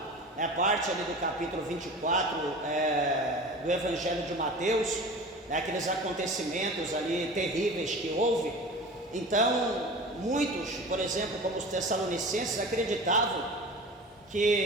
né, parte ali do capítulo 24 do Evangelho de Mateus, né, aqueles acontecimentos ali terríveis que houve. Então muitos, por exemplo, como os tessalonicenses, acreditavam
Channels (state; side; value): normal; both; correlation 0.36